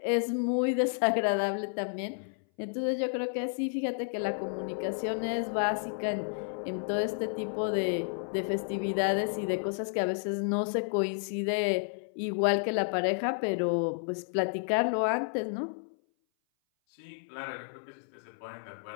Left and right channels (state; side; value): silent; right; 57 dB below the other